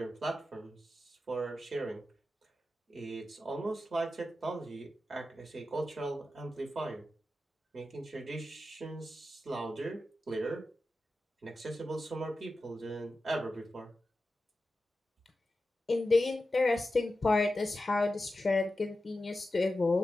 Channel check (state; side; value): normal; both; correlation 0.92